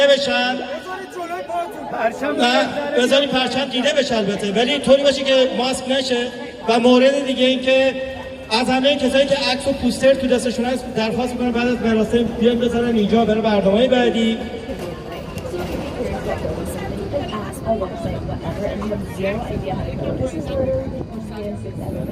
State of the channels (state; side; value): identical; both; correlation 1.00